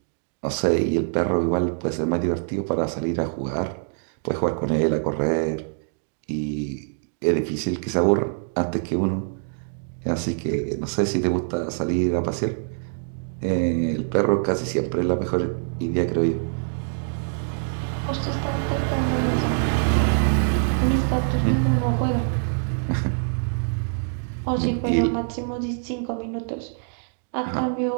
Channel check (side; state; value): left; silent; digital silence